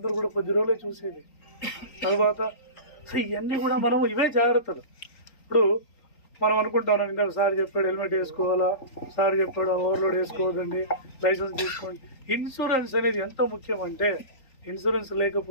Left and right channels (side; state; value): right; late; 3.9 ms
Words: కూడా 10 రోజులే చూసేది. తర్వాత ఇవన్నీ కూడా మనం ఇవే జాగ్రత్తలు. ఇప్పుడు మనం అనుకుంటాం, ఇందాక సార్ చెప్పాడు హెల్మెట్ వేసుకోవాలా, సార్ చెప్పాడు ఓవర్లోడ్ వేసుకోవద్దండి, లైసెన్స్ తీసుకోండి. ఇన్సూరెన్స్ అనేది ఎంత ముఖ్యం అంటే, ఇన్సూరెన్స్